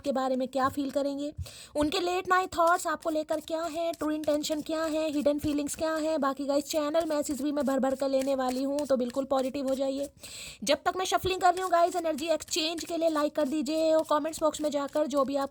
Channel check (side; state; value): both; identical; correlation 1.00